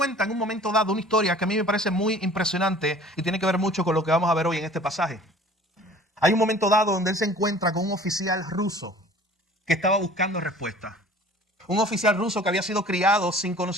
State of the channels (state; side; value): normal; both; correlation 0.47